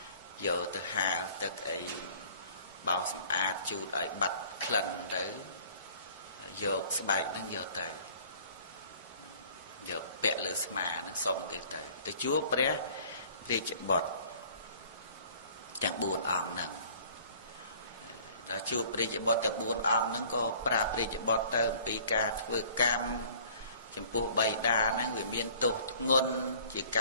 យកទៅហាលទឹកអីបោសសម្អាតជូតឲ្យបាត់ក្លិនទៅយកស្បែកហ្នឹងយកទៅយកពាក់លើស្មាហ្នឹងសុំគេទៅជួបព្រះរាជបុត្រទាំង4អង្គហ្នឹងដល់ជួបព្រះរាជបុត្រទាំង4អង្គហ្នឹងក៏ប្រាប់ព្រះរាជបុត្រទៅអំពីការធ្វើកម្មចំពោះបិតាហ្នឹងវាមានទោសធ្ងន់ជាក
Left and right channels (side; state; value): both; inverted; correlation -0.52